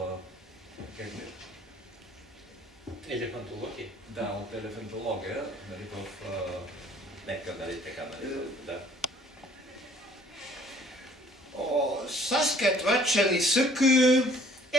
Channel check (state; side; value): normal; both; correlation 0.57